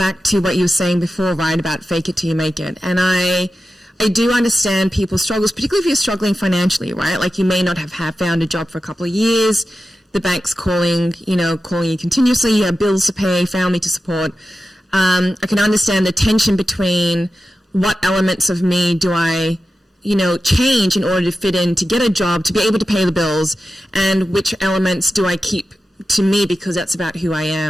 to what you were saying before, right, about fake it till you make it. And I do understand people's struggles, particularly if you're struggling financially, right? Like you may not have found a job for a couple of years. The bank's calling you continuously. You have bills to pay, family to support. I can understand the tension between what elements of me do I, change in order to fit in, to get a job, to be able to pay the bills, and which elements do I keep to me because that's about who I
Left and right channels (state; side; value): normal; both; correlation 0.92